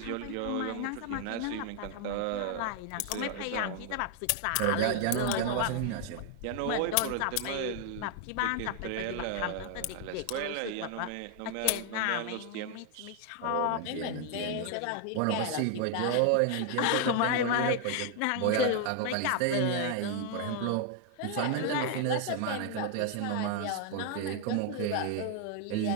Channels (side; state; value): both; different; correlation 0.00